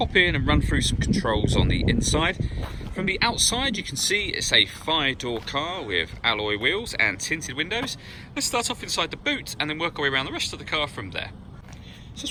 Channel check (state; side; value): identical; both; correlation 1.00